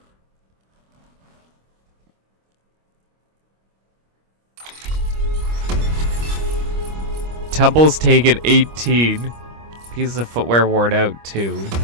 Tumbles taken 18. Pieces of footwear worn out 2.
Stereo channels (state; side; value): late; left; 25 ms